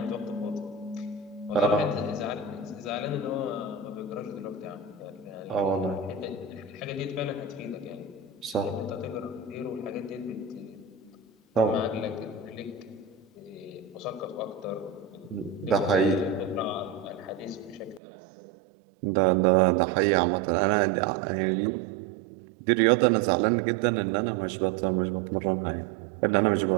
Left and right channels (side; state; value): left; drops out; at 18.0 s